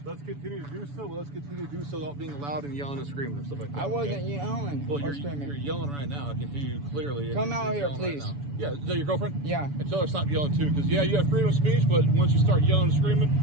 Let's continue to do so. Let's continue to do so without being loud and yelling and screaming and stuff like that. I wasn't okay? yelling Well, or you're screaming. yelling right now. I can hear you clearly. Come out here, yelling please. Right now. Yeah, is that your girlfriend? Yeah. And tell her to stop yelling too, because yeah, you have freedom of speech, but once you start yelling and screaming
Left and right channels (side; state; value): left; late; 7.0 ms